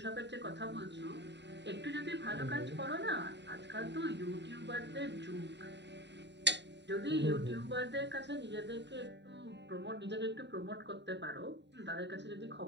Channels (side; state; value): left; late; 0.51 ms